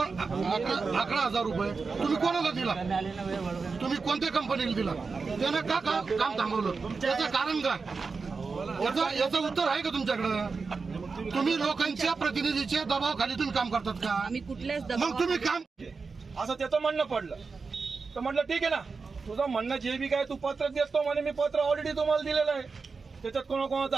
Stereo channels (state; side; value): quieter; left; 4.6 dB